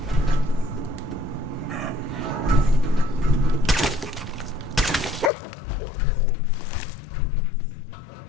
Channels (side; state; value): right; drops out; at 5.3 s